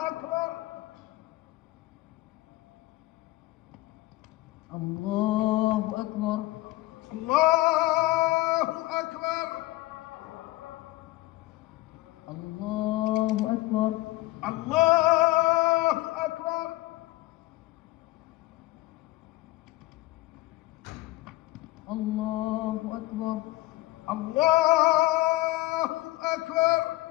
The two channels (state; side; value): quieter; right; 18.8 dB